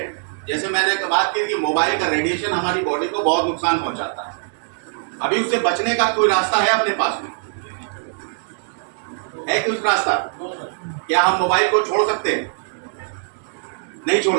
जैसे मैंने बात की कि मोबाइल का रेडिएशन हमारी बॉडी को बहुत नुकसान पहुंचाता है। अभी उससे बचने का कोई रास्ता है अपने पास में? है कुछ रास्ता? क्या हम मोबाइल को छोड़ सकते हैं? नहीं छोड़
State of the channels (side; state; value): left; silent; digital silence